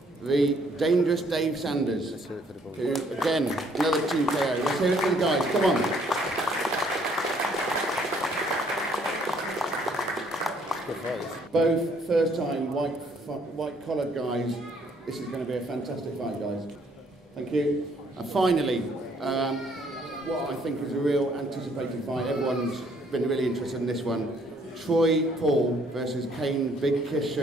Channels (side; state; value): both; normal; correlation 0.65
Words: the Dangerous Dave Sanders, who, again, another Team KO. Let's hear it for the guys, come on. Both first-time white-collared guys. This is going to be a fantastic fight, guys. Thank you. And finally, what I think is a real anticipated fight. Everyone's been really interested in this one. Troy Paul versus Payne Big Kiss